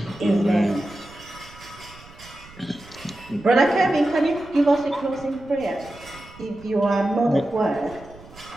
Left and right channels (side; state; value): right; noise; rumble, 21 dB below the sound